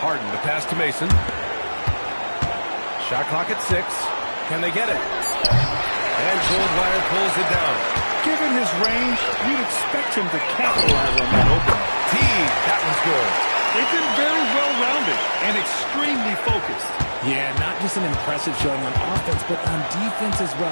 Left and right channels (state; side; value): inverted; both; correlation -1.00